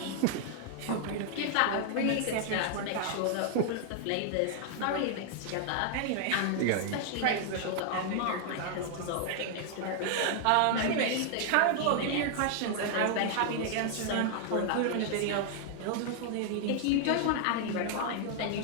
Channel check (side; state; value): both; different; correlation 0.00